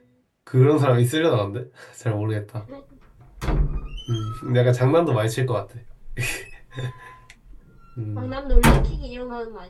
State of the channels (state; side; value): identical; both; correlation 1.00